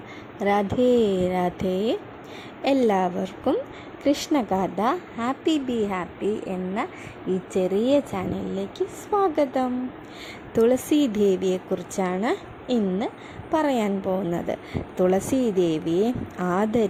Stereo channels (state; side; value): identical; both; correlation 1.00